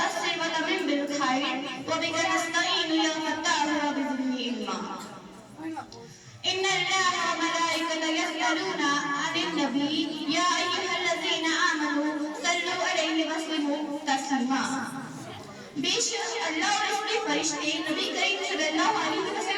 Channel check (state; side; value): identical; both; correlation 1.00